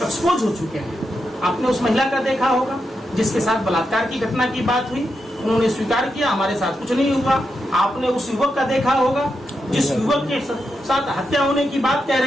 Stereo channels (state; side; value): normal; both; correlation 0.86